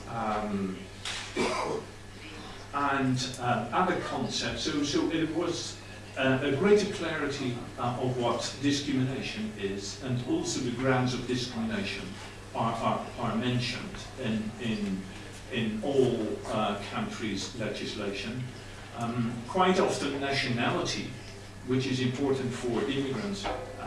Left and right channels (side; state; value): both; identical; correlation 1.00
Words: and other concepts. So it was a greater clarity of what discrimination is, and also the grounds of discrimination are mentioned in all countries' legislation. Quite often nationality, which is important for immigrants,